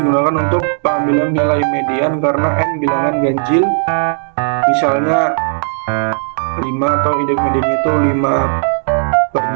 untuk pengambilan nilai median karena n bilangan ganjil, misalnya 5 atau indeks mediannya itu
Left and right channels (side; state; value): left; silent; digital silence